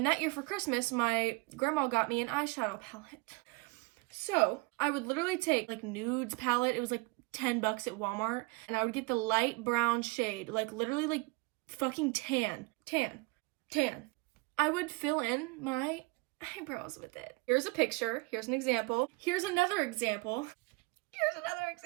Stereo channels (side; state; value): left; quieter; 26.7 dB